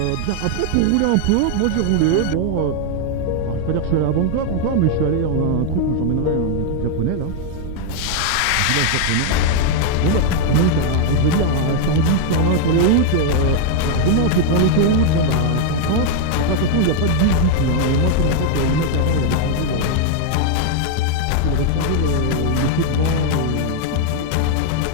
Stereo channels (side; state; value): both; different; correlation 0.00